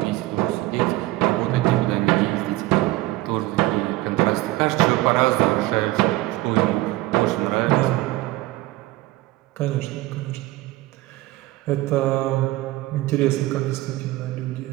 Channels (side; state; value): left; quieter; 18.4 dB